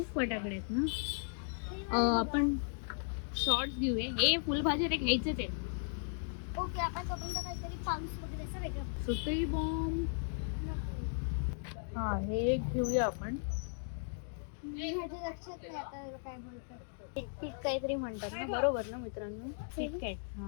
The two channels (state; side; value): silent; right; digital silence